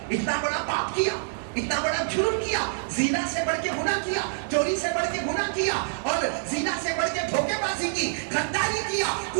اتنا بڑا پاپ کیا، اتنا بڑا جرم کیا، زنا سے بڑھ کے گناہ کیا، چوری سے بڑھ کے گناہ کیا، اور زنا سے بڑھ کے دھوکے بازی کی، غداری کیا،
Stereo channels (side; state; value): left; silent; digital silence